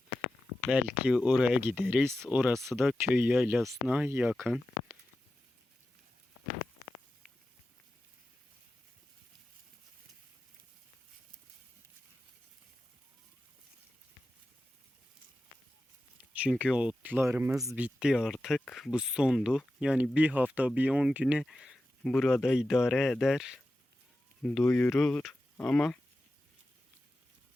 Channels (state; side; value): normal; both; correlation 0.92